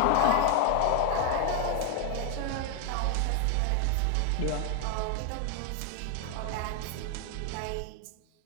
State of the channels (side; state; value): both; different; correlation 0.01